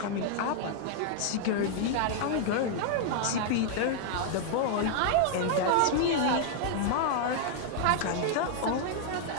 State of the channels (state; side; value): different; both; correlation 0.00